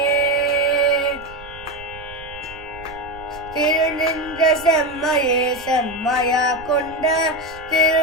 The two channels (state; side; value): noise; right; rumble, 19 dB below the sound